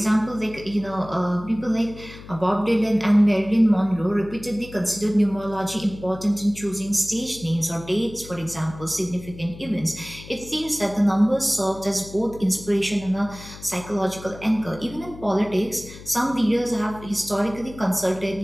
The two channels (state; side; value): noise; left; hum, 16 dB below the sound